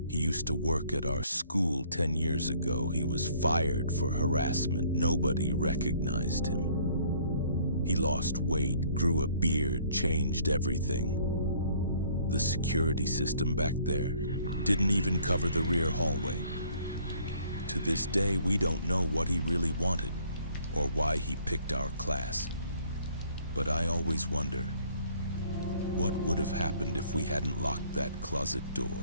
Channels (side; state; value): both; inverted; correlation -0.59